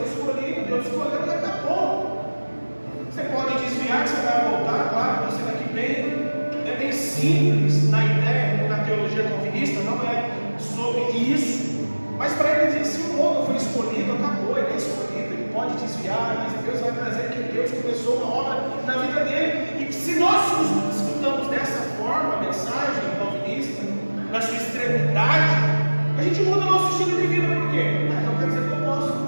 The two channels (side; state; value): both; inverted; correlation -1.00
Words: escolhido, Deus escolheu e acabou. Você pode desviar que você vai voltar, claro, estou sendo aqui bem simples na ideia, na teologia calvinista, não é sobre isso. Mas para ele dizer, se o homem foi escolhido, acabou, ele é escolhido, ele pode desviar, mas Deus vai trazer que Deus começou uma obra na vida dele. E que se nós escutamos dessa forma a mensagem calvinista, na sua extremidade, a gente muda o nosso estilo de vida. Por quê? Então quer dizer que eu posso